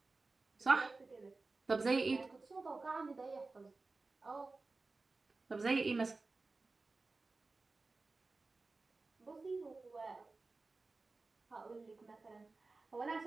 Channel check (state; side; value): quieter; left; 3.6 dB